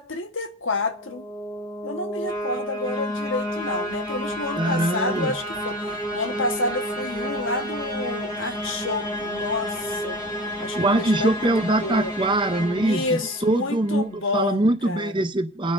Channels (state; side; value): normal; both; correlation 0.37